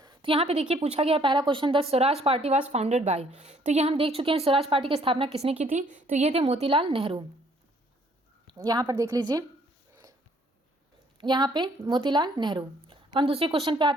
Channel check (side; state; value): both; normal; correlation 0.63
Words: यहाँ पे देखिए पूछा गया पहला question, the Swaraj party was founded by. तो ये हम देख चुके हैं, स्वराज पार्टी की स्थापना किसने की थी, तो ये थे मोतीलाल नेहरू। यहाँ पर देख लीजिए, यहाँ पे मोतीलाल नेहरू। हम दूसरे क्वेश्चन पे